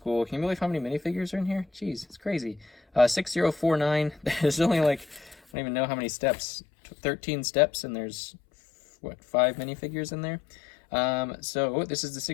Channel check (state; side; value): drops out; right; at 5.4 s